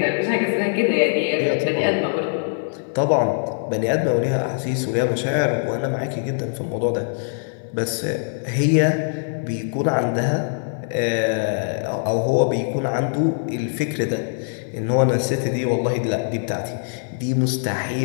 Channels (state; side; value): silent; right; 63 dB below the other